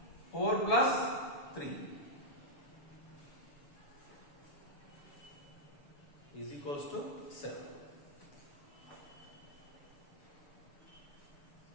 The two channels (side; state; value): right; late; 7.1 ms